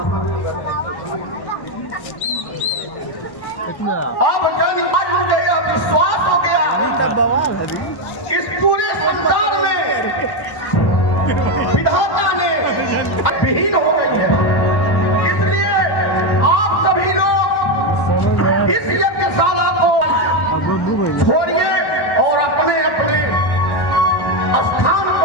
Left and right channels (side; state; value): right; late; 1.1 ms